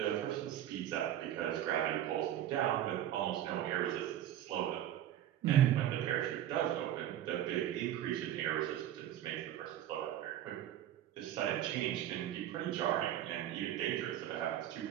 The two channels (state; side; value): quieter; left; 11.7 dB